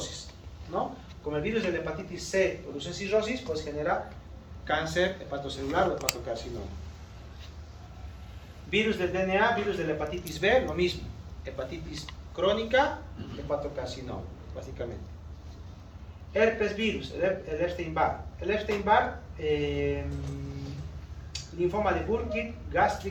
¿no? Como el virus de la hepatitis C produce cirrosis, pues genera cáncer hepatocelular o hepatocarcinoma. Virus del DNA, virus de la hepatitis B, lo mismo. Hepatitis crónica, hepatocarcinoma, básicamente. Herpes virus, el Epstein-Barr. El Epstein-Barr, linfoma de Burkitt,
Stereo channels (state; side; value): identical; both; correlation 1.00